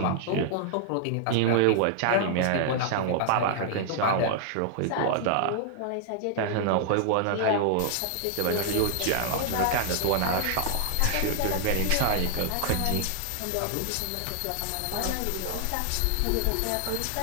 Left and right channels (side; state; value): both; different; correlation -0.01